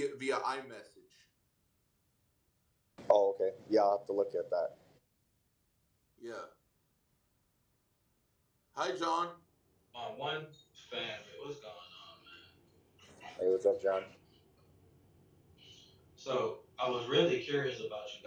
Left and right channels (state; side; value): identical; both; correlation 1.00